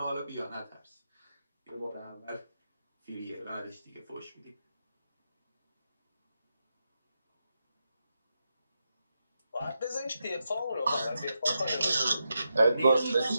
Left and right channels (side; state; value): both; inverted; correlation -0.86